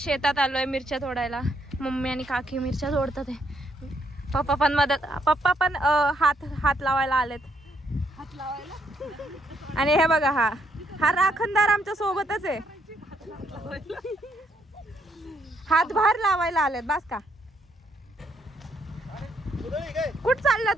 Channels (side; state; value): both; normal; correlation 0.73